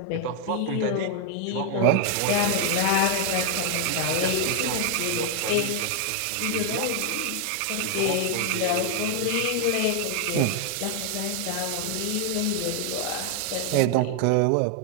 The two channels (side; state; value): both; different; correlation 0.00